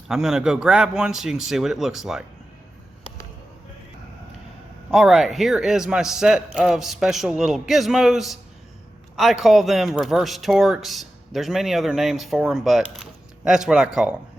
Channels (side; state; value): both; normal; correlation 0.93